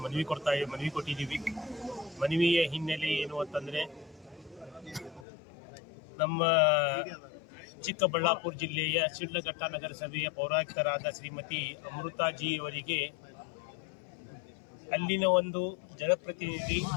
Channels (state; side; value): drops out; right; at 5.2 s